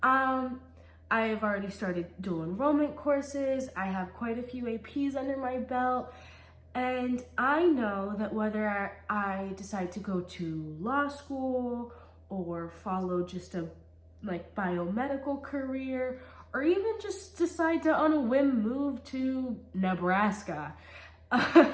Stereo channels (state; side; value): identical; both; correlation 1.00